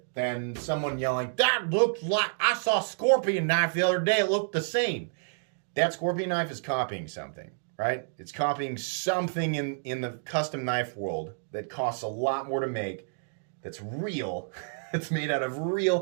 than someone yelling, that looks like, I saw a scorpion knife the other day, it looked the same. That scorpion knife is copying something, right? It's copying something in the custom knife world that costs a lot more to make, that's real, it's made out of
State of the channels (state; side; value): silent; left; digital silence